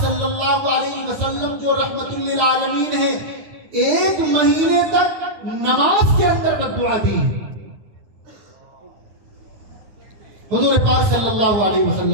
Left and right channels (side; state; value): left; late; 9.4 ms